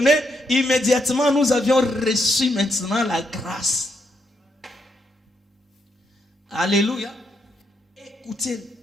Immédiatement, nous avions reçu maintenant la grâce. Alléluia. Écoutez.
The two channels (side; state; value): both; normal; correlation 0.77